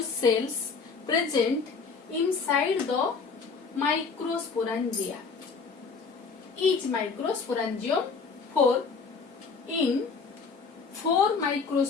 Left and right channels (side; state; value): right; quieter; 5.0 dB